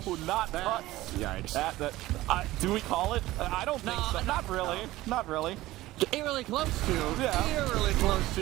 not that. Yikes. Do we call it? I don't think so. Not really. Not really. Eerily close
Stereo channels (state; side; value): quieter; left; 17.1 dB